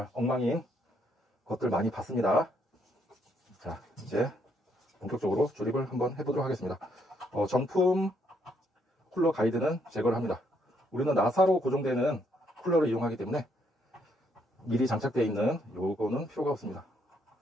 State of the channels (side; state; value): both; normal; correlation 0.72